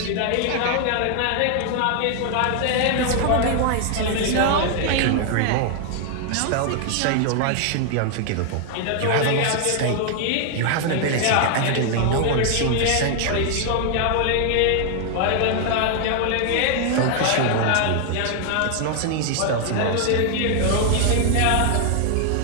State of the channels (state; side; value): different; both; correlation 0.00